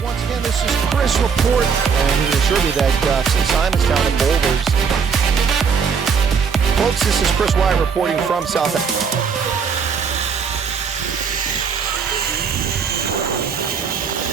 once again. This is Chris Report, and he assured me that since Simonstown and Boulders, folks, this is Chris Wyatt reporting from South Africa.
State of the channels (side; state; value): left; quieter; 6.1 dB